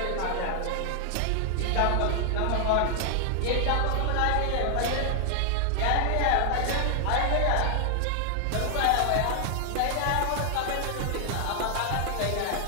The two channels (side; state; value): both; different; correlation 0.00